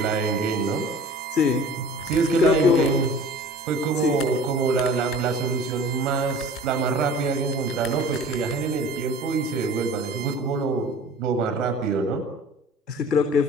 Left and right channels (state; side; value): normal; both; correlation 0.43